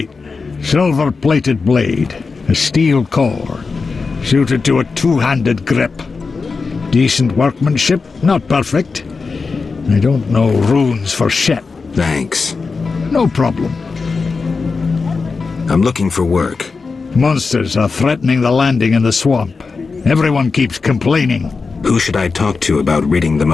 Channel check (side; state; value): right; quieter; 4.5 dB